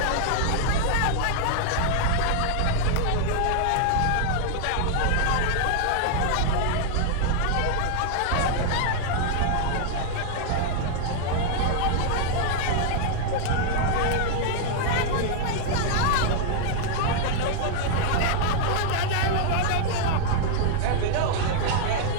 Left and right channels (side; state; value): both; different; correlation 0.00